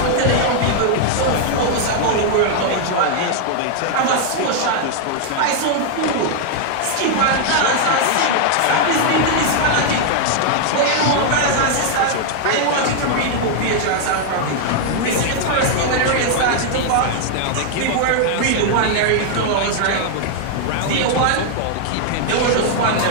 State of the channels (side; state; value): both; different; correlation 0.00